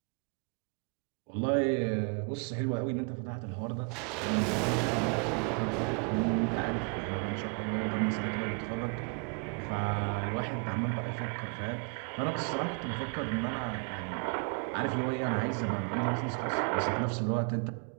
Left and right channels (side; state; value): left; quieter; 37.5 dB